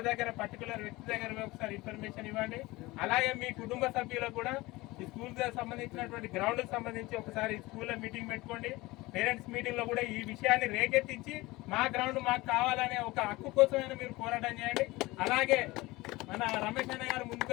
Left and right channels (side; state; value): right; quieter; 20.8 dB